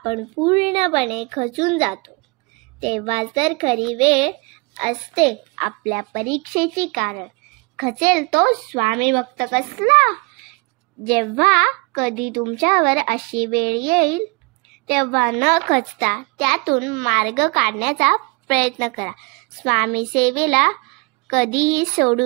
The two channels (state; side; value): quieter; left; 29.6 dB